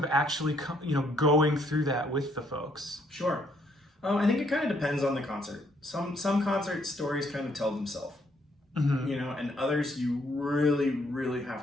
actually going through that with the folks? Sure. I think it kind of depends on the concert. Some concert stories kind of tell themselves, and others you really, really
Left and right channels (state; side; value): normal; both; correlation 0.69